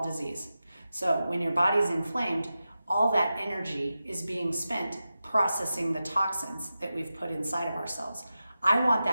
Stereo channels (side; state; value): both; inverted; correlation -0.92